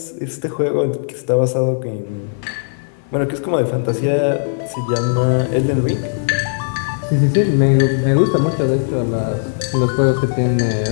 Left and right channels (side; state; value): right; silent; 55 dB below the other